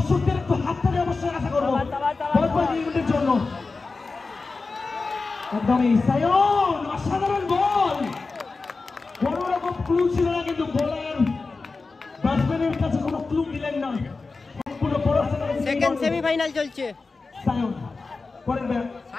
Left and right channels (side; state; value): right; quieter; 4.0 dB